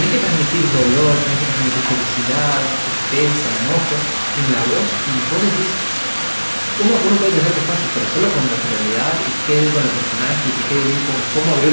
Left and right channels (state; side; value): inverted; both; correlation -1.00